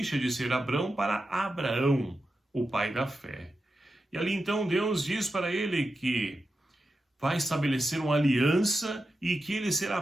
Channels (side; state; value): both; normal; correlation 0.90